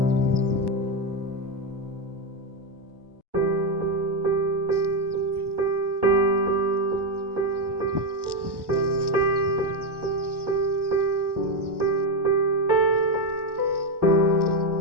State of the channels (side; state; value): left; late; 1.1 ms